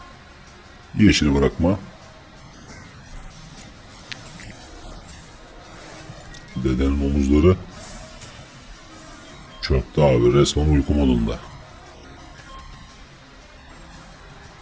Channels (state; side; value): identical; both; correlation 1.00